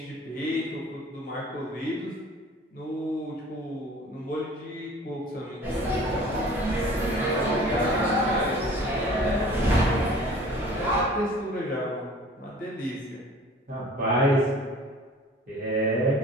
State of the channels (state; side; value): normal; both; correlation 0.46